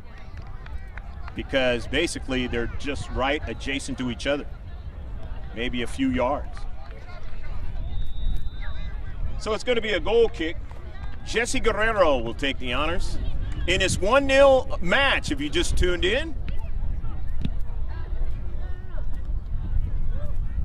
Because basically they're just right adjacent to each other. Maybe a few yards. So it's going to be a goal kick. Jesse Guerrero will take the honors. In this 1-0 match, if you just tuned in.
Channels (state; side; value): identical; both; correlation 1.00